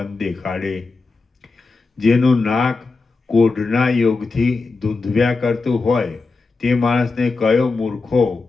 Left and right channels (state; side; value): quieter; right; 3.9 dB